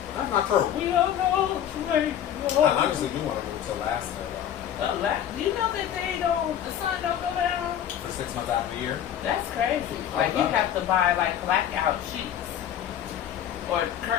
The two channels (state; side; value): quieter; right; 10.3 dB